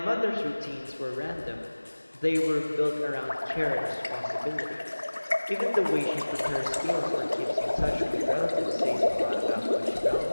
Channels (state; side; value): inverted; both; correlation -1.00